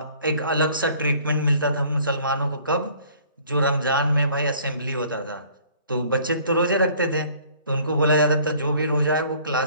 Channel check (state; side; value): inverted; both; correlation -0.55